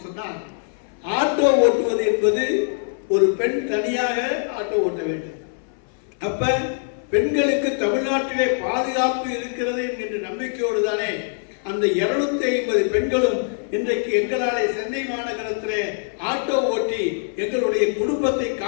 சொன்னால் ஆட்டோ ஓட்டுவது என்பது ஒரு பெண் தனியாக ஆட்டோ ஓட்ட வேண்டும். அப்ப பெண்களுக்கு தமிழ்நாட்டிலே பாதுகாப்பு இருக்கிறது என்கின்ற நம்பிக்கையோடு தானே அந்த 250 பெண்களும் இன்றைக்கு எங்களாலே சென்னை மாநகரத்திலே ஆட்டோ ஓட்டி எங்களுடைய குடும்பத்தை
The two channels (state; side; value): silent; right; 63 dB below the other